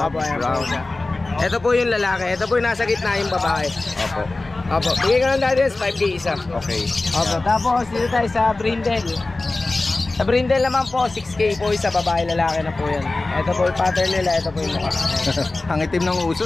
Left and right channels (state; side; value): quieter; right; 3.1 dB